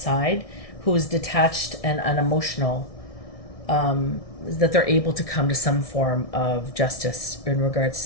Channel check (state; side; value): late; right; 1.6 ms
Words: who is detached and unemotional, that they're able to come to some form of justice in regards